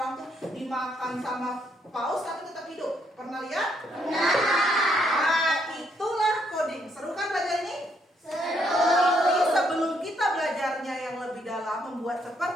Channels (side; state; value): both; normal; correlation 0.73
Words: orang tuh dimakan sama paus tapi tetap hidup. Pernah lihat? Nah, itulah coding. Seru kan belajar ini? Tapi sebelum kita belajarnya yang lebih dalam, membuat